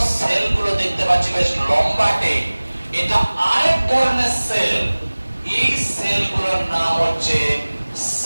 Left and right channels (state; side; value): inverted; both; correlation -1.00